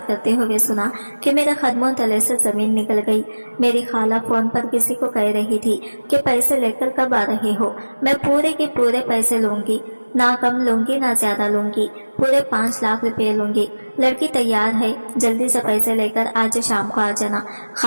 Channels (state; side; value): inverted; both; correlation -1.00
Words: करते हुए सुना कि मेरे कदमों तले से जमीन निकल गई। मेरी खाला फोन पर किसी को कह रही थी कि पैसे लेकर कब आ रहे हो, मैं पूरे के पूरे पैसे लूंगी, ना कम लूंगी ना ज्यादा लूंगी, पूरे 5 लाख रुपए लूंगी। लड़की तैयार है, जल्दी से पैसे लेकर आज शाम को आ जाना।